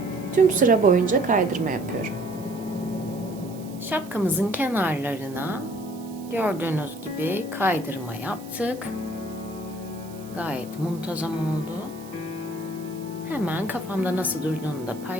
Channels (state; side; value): noise; right; hiss, 21 dB below the sound